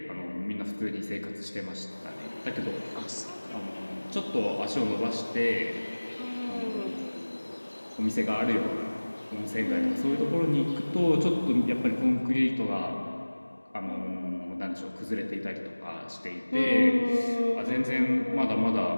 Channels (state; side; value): inverted; both; correlation -1.00